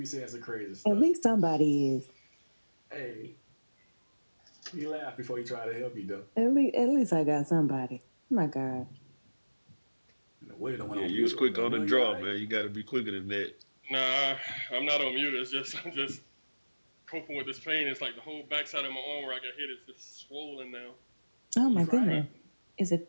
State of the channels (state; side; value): inverted; both; correlation -1.00